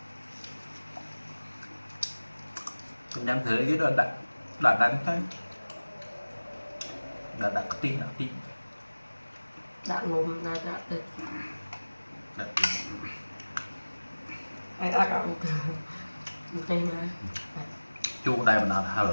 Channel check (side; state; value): both; inverted; correlation -1.00